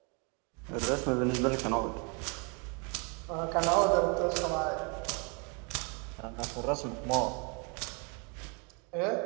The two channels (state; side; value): quieter; left; 34.1 dB